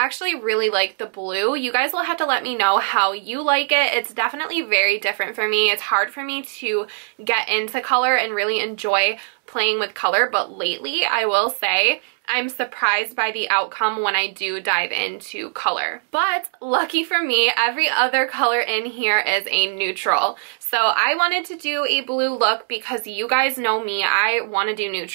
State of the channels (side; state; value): left; silent; digital silence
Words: really like the blue. You guys will have to let me know how you like it. It's definitely very different for me. It's hard for me to get into color and really enjoy playing with color, but lately, I will say, I'm surprised by the outcome when I do dive into color. But lucky for me, every other color in here is a neutral. So I wanted to do a blue look because you guys know me, I want to do